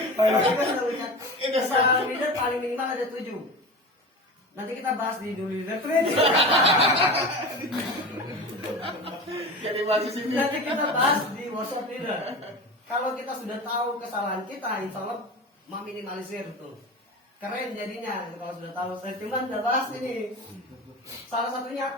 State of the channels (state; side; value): normal; both; correlation 0.30